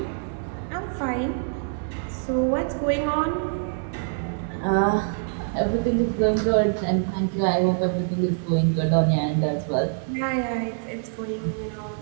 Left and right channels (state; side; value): silent; left; digital silence